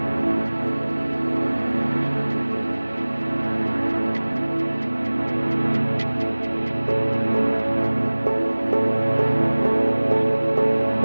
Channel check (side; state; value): both; inverted; correlation -1.00